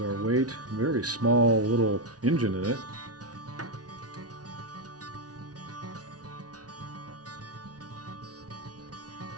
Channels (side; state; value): left; late; 0.68 ms